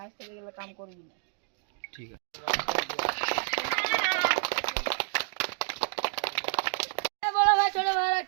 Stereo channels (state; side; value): silent; left; digital silence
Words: आज থেকে এগুলো काम করবি না ठीक है বড় ভাই ছোট ভাইরা